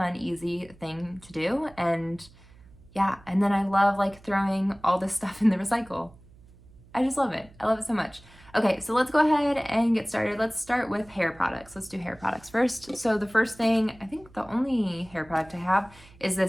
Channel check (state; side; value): noise; right; hum, 24 dB below the sound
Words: easy thing to do, and yeah, and then I love throwing all this stuff in the recycle. I just love it. I love it so much. Okay, so let's go ahead and get started. Let's start with hair products. Let's do hair products first. So the first thing, I think the only hair product I have is